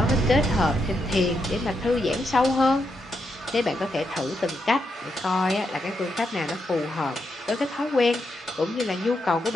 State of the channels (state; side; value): normal; both; correlation 0.82